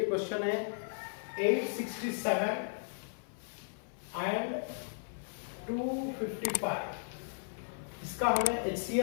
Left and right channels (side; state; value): right; silent; 54 dB below the other